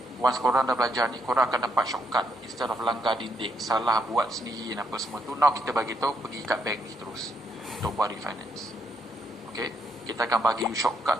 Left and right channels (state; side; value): normal; both; correlation 0.76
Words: once korang dah belajar ni, korang akan dapat shortcut. Instead of langgar dinding, salah buat sendiri dan apa semua tu, now kita bagi tahu pergi kat bank ni terus untuk buat refinance. Okay? Kita akan bagi you